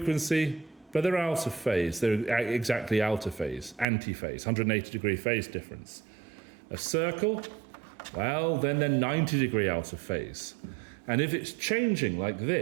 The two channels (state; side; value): drops out; left; at 3.9 s